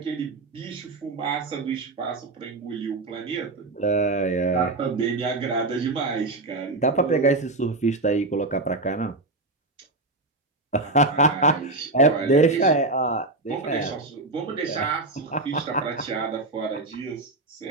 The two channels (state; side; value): quieter; left; 3.0 dB